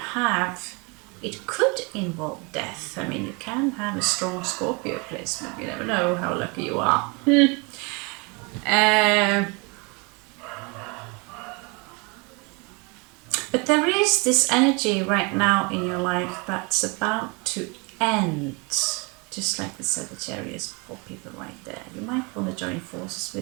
have, it could involve death. I mean, you can have a strong Scorpio placement. You never know how lucky you are. But there is this energy right now in your life that's about to end. Just like the Sagittarius people right there. You might want to join forces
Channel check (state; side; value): quieter; left; 30.0 dB